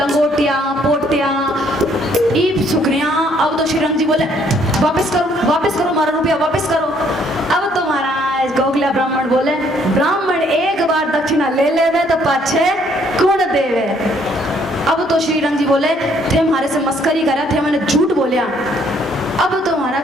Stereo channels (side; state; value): both; normal; correlation 0.65